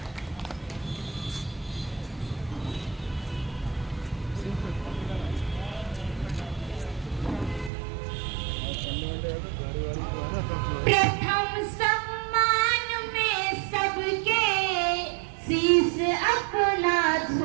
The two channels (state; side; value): drops out; left; at 7.7 s